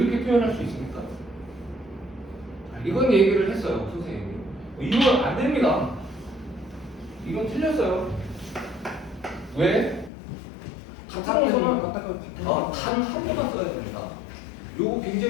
표현할 수 있습니까? 이건 얘기를 했어요, 선생님이. 이건 안 됩니다. 이건 틀렸어요. 왜? 같은 원소는 단 한 번만 써야 됩니다. 요거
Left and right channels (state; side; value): drops out; right; at 10.1 s